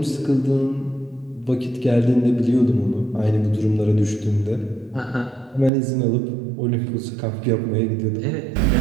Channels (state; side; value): drops out; left; at 5.7 s